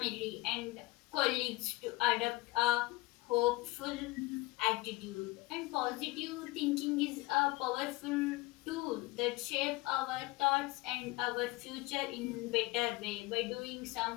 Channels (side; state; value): right; quieter; 21.2 dB